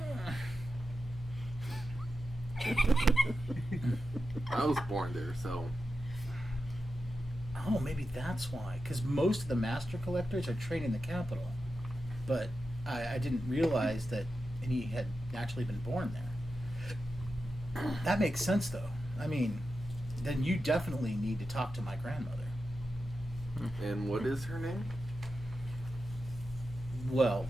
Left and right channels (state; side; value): normal; both; correlation 0.90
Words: I was born there, so oh, maybe that's why. Because most of the master collectors are trained in the capital. But I didn't realize that any had actually been born there. That makes sense, though. I mean, then you definitely need to talk to my grandmother. And what is her name? Well,